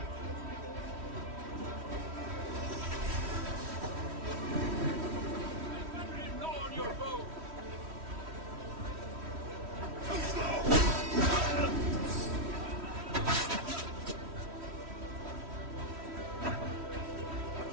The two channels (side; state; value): left; late; 3.1 ms